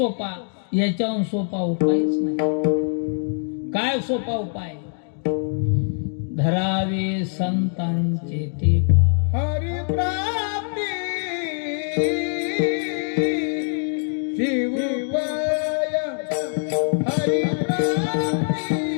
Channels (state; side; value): silent; right; 61 dB below the other